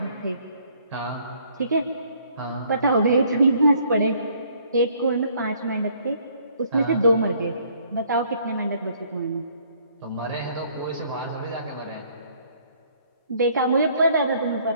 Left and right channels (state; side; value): inverted; both; correlation -0.63